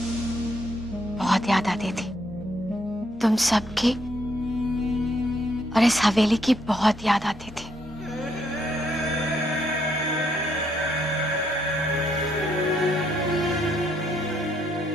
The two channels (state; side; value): normal; both; correlation 0.73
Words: बहुत याद आती थी तुम सबकी और इस हवेली की, बहुत याद आती थी।